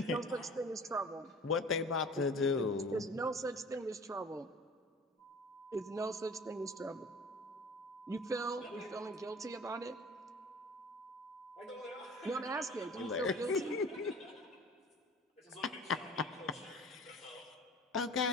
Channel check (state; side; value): normal; both; correlation 0.44